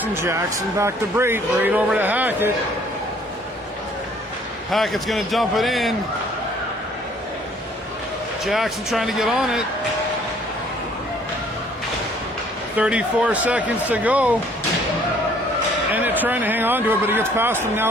Jackson back to Braid, Braid over to Hackett. Hackett's going to dump it in. Jackson trying to get on it. 34 seconds to go. And it's trying to hang on to it, but he gets past him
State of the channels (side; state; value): both; normal; correlation 0.59